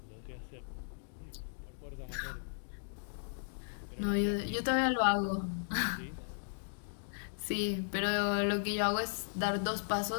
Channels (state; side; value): silent; right; digital silence